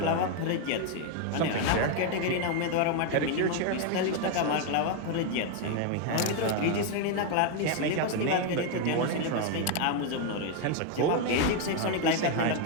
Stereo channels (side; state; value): both; different; correlation 0.01